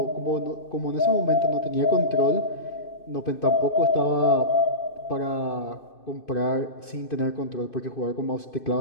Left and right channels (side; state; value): right; late; 2.5 ms